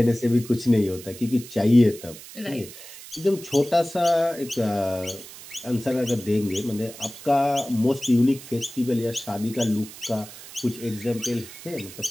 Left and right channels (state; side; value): noise; right; hiss, 16 dB below the sound